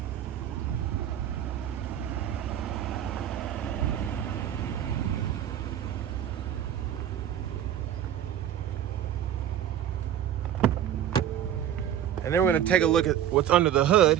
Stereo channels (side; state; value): left; quieter; 10.5 dB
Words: And then we're gonna take a look at what's under the hood.